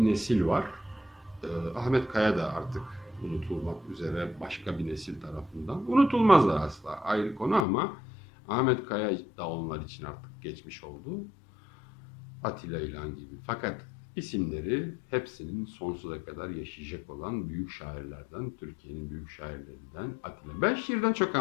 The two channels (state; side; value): drops out; right; at 7.7 s